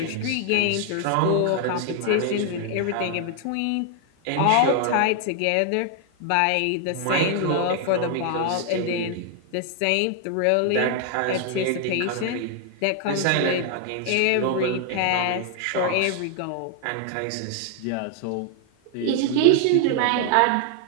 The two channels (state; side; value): different; both; correlation 0.00